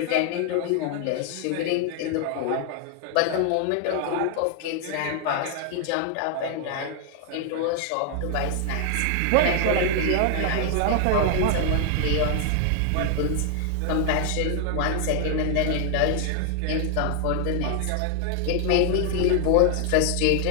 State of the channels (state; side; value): different; both; correlation 0.00